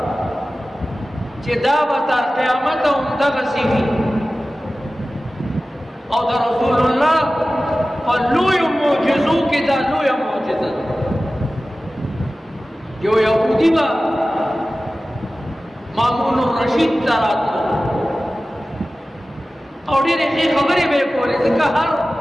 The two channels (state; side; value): normal; both; correlation 0.96